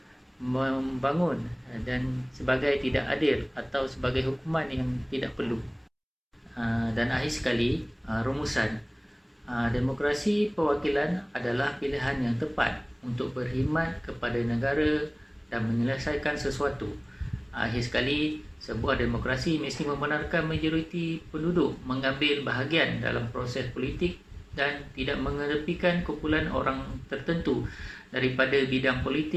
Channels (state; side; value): identical; both; correlation 1.00